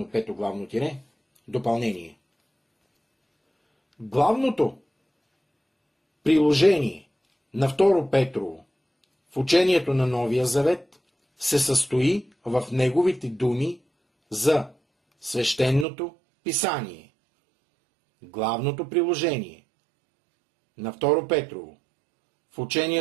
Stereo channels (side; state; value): left; drops out; at 15.9 s